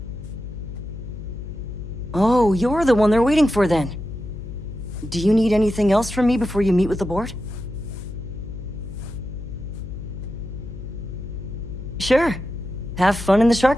Oh, you're the one they're waiting for then. Do you need anything else from me before you meet with the board? Sure. Have fun in the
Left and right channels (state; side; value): noise; left; hum, 10 dB below the sound